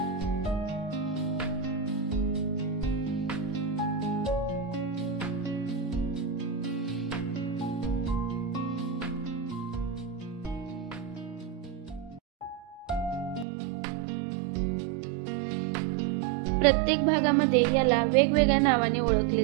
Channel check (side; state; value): left; drops out; at 13.5 s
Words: प्रत्येक भागामध्ये याला वेगवेगळ्या नावाने ओळखले